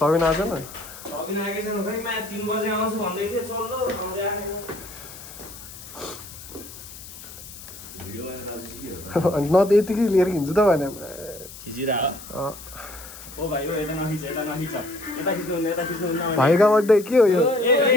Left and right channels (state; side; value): noise; left; hiss, 15 dB below the sound